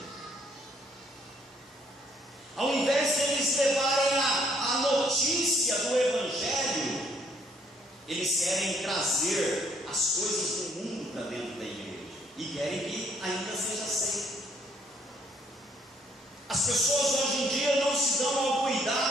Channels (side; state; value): both; normal; correlation 0.66